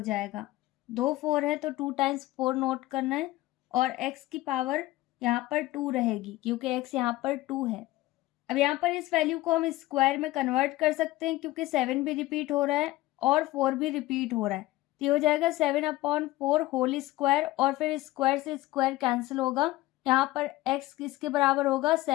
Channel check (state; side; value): quieter; right; 17.6 dB